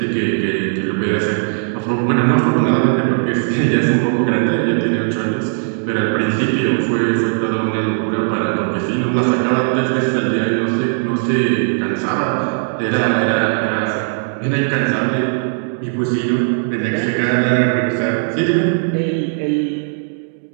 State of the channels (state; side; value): silent; left; digital silence